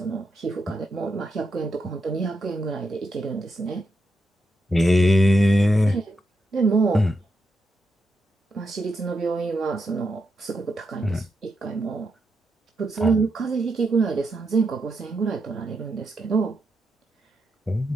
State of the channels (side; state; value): both; normal; correlation 0.84